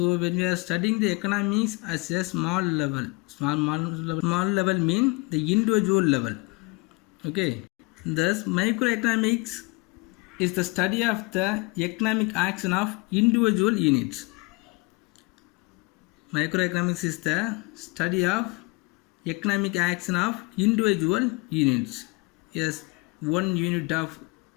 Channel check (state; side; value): quieter; right; 27.2 dB